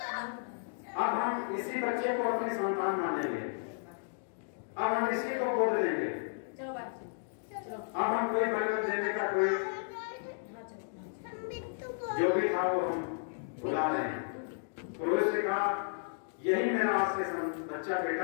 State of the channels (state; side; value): silent; right; digital silence